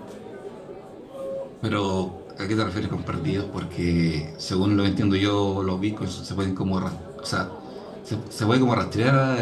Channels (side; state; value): both; identical; correlation 1.00